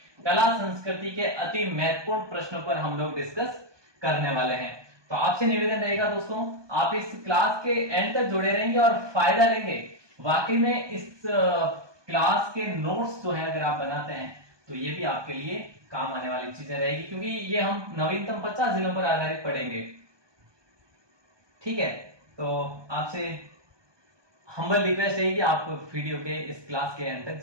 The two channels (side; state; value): left; late; 1.2 ms